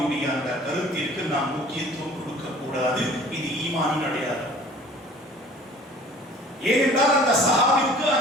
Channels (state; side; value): normal; both; correlation 0.49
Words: அந்த கருத்திற்கு நாம் முக்கியத்துவம் கொடுக்க கூடாது. இது ஈமானின் அடையாளம். ஏனென்றால் அந்த சஹாபிக்கு